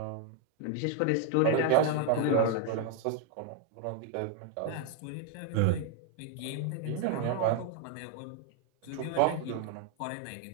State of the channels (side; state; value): both; different; correlation 0.00